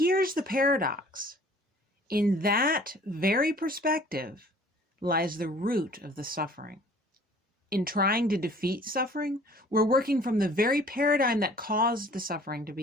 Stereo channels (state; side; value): normal; both; correlation 0.52